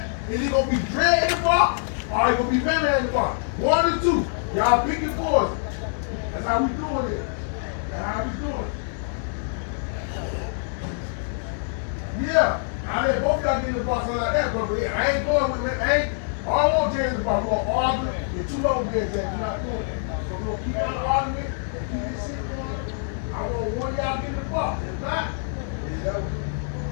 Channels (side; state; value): right; silent; digital silence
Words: is it gonna be dread in the box or it gonna be man in the box? One or two. Y'all pick your poison. That's how we doing it. That's how we doing it. Yeah. I mean, both y'all get in the box like that, but I ain't going with it. I ain't all on James in the box. We're gonna argue. You're too long games that you're not doing it. So we're gonna keep on arguing and keep this shit going. I want one of y'all get in the box. If not,